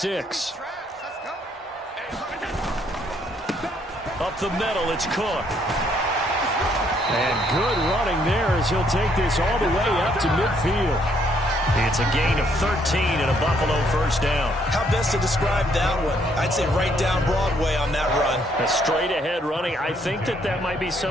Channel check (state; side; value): normal; both; correlation 0.69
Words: Up the middle, it's Cook. And good running there as he'll take this all the way up to midfield. It's a gain of 13 and a Buffalo 1st down. How best to describe that one? I'd say right down Broadway on that run. A straight-ahead running. I think that might be